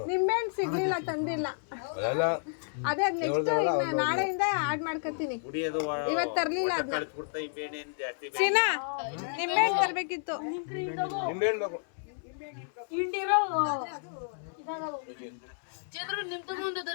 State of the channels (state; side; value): silent; right; 57 dB below the other